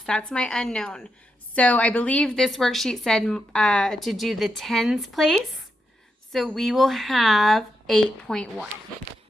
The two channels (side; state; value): both; normal; correlation 0.85